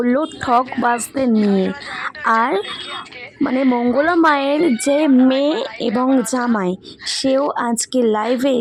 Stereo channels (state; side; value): identical; both; correlation 1.00